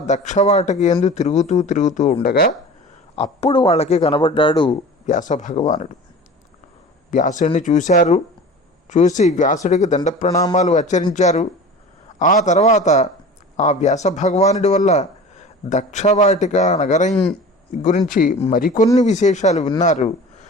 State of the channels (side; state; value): both; normal; correlation 0.38